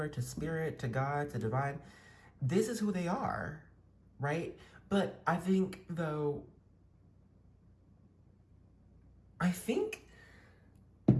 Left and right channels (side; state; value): both; identical; correlation 1.00